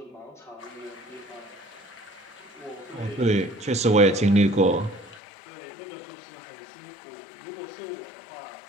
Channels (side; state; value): right; drops out; at 5.2 s